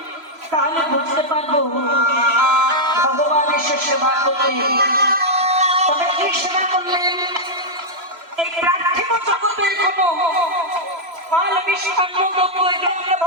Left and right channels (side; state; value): left; late; 3.0 ms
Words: তাহলে বুঝতে পারবো ভগবান এসে সেবা করলেন। তবে কি সেবা করলেন? এই পার্থিব জগতের কোনো ফল মিষ্টান্ন দ্রব্য এগুলো আমরা